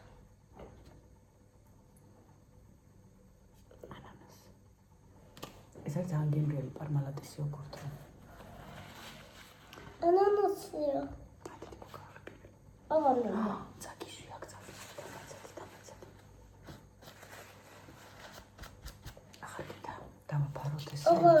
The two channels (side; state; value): both; identical; correlation 1.00